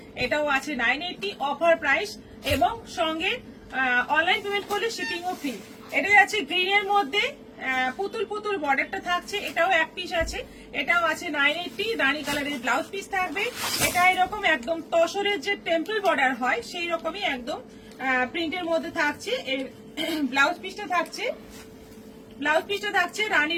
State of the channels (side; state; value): both; identical; correlation 1.00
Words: এটাও আছে 980 অফার প্রাইস, এবং সঙ্গে অনলাইন পেমেন্ট করলে শিপিংও ফ্রি। এটা যাচ্ছে গ্রিনের মধ্যে পুতুল বর্ডারটা থাকছে, এটাও এক পিস আছে, এটাও আছে 980। রানী কালারের ব্লাউজ পিস থাকবে। এটা এরকম একদম তসরের যে টেম্পল বর্ডার হয় সেই রকমই একদম প্রিন্টের মধ্যে থাকছে। ব্লাউজ পিসটা থাকছে